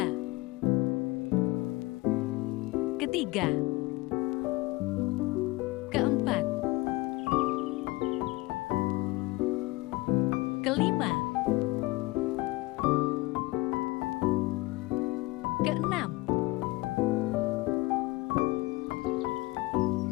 Ketiga. Keempat. Kelima. Keenam.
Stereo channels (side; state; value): right; quieter; 21.3 dB